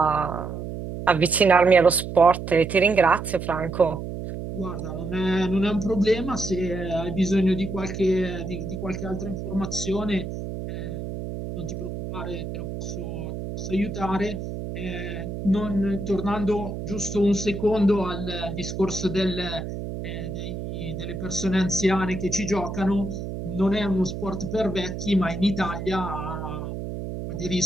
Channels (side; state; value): right; noise; hum, 7 dB below the sound